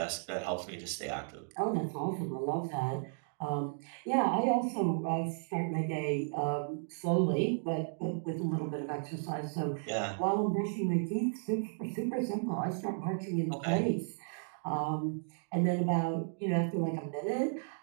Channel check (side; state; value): left; silent; digital silence